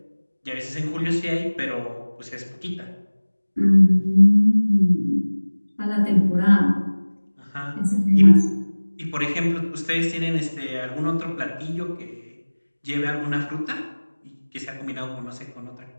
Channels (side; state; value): both; inverted; correlation -1.00